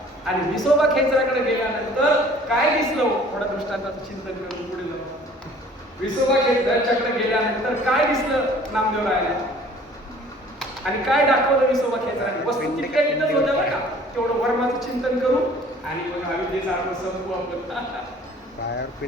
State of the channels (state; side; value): normal; both; correlation 0.52